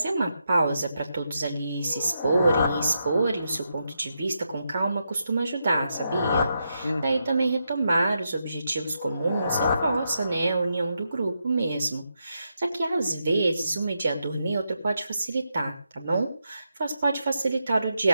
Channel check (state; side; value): inverted; both; correlation -0.84